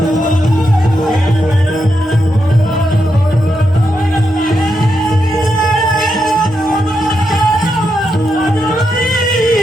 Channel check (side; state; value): both; normal; correlation 0.84